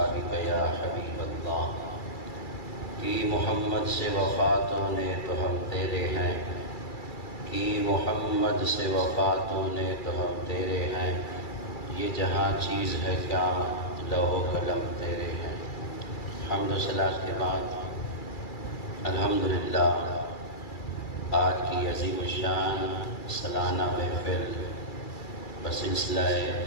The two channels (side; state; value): right; late; 2.3 ms